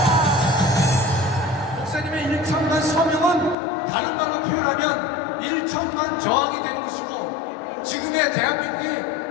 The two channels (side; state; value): right; drops out; at 3.6 s